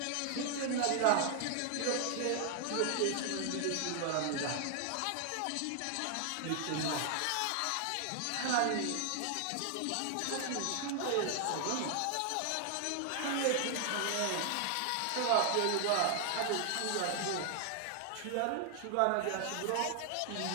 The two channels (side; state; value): both; different; correlation 0.00